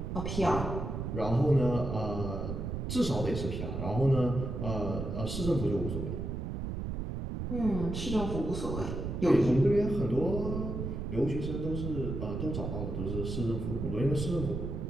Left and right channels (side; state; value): right; noise; rumble, 4 dB below the sound